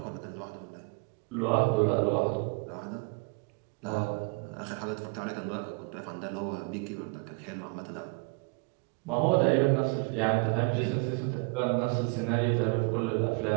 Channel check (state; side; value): quieter; left; 33.0 dB